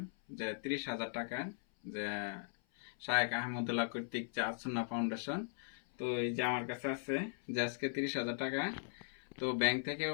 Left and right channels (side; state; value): right; silent; 52 dB below the other